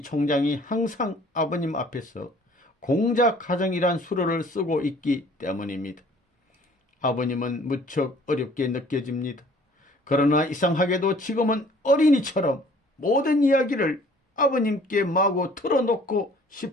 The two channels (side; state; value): both; normal; correlation 0.54